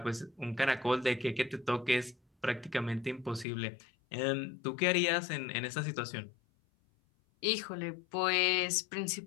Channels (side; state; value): right; drops out; at 3.5 s